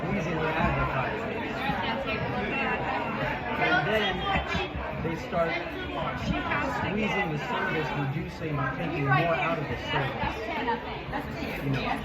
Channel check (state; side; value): identical; both; correlation 1.00